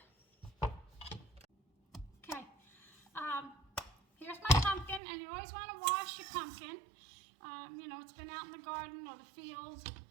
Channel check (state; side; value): drops out; left; at 5.0 s